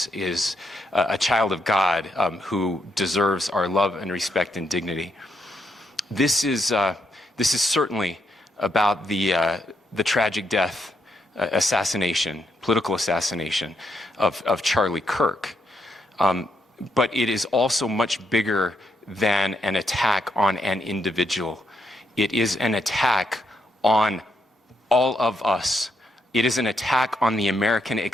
a child of God who deserves our love and respect and dignity. This is certainly about the tragic death, political assassination of Charlie Kirk. But it is also much bigger than an attack on an individual. It is an attack on all of us. It is an attack on the American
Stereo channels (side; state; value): both; normal; correlation 0.79